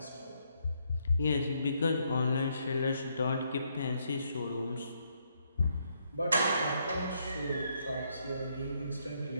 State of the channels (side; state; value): both; inverted; correlation -0.74